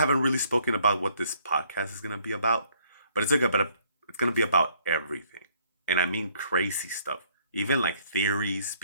really spoken about what this podcast is gonna be about, but it's gonna be about everything, and I mean crazy stuff, even like theories,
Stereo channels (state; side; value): inverted; both; correlation -0.65